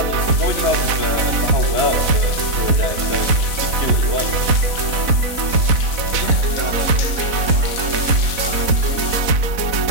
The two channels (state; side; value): late; left; 4.0 ms